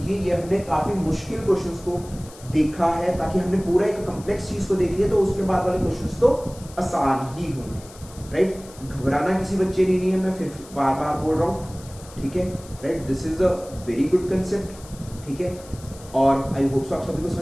ये हमने काफी मुश्किल क्वेश्चंस को देखा है ताकि हमने पूरा एक कॉम्प्लेक्स चीज को देख लिया, तो उसके बाद वाले क्वेश्चंस तो आसान ही होंगे, राइट। घबराना किसी बच्चे ने नहीं है, मैं फिर बार बार बोल रहा हूँ, ठीक है, right. This is a very good concept, ठीक है। और आई होप सो आप सभी को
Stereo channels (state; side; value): noise; left; hiss, 20 dB below the sound